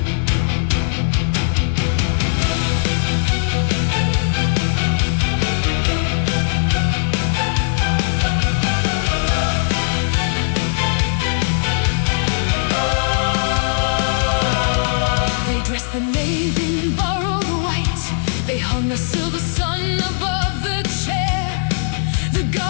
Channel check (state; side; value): silent; right; digital silence